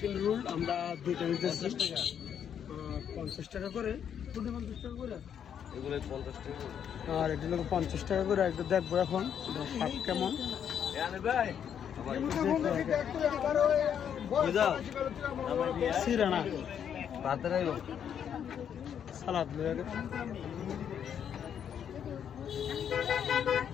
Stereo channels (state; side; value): quieter; right; 8.6 dB